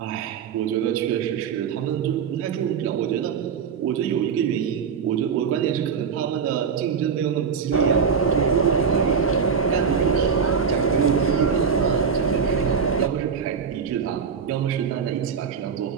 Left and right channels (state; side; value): quieter; left; 6.4 dB